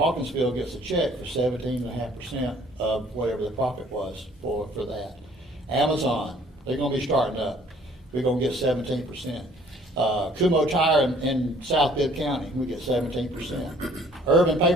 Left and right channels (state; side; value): normal; both; correlation 0.57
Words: gets a check for 17.5% of whatever the profit was for that. Amazon, they're going to be starting up. We're going to get 17%. Kumo Tire in South Bibb County, we get 17%. Urban